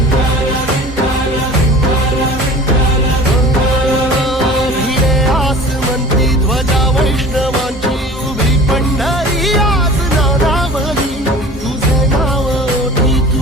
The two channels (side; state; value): both; normal; correlation 0.42